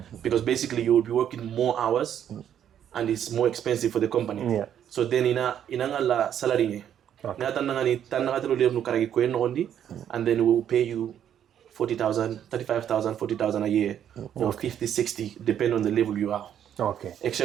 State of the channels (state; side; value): quieter; left; 9.8 dB